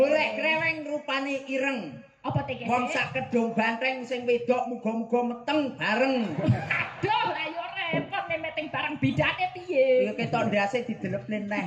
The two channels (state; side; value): identical; both; correlation 1.00